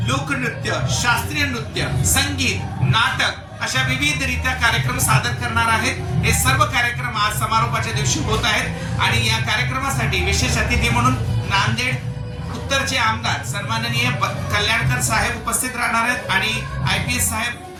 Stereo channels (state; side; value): identical; both; correlation 1.00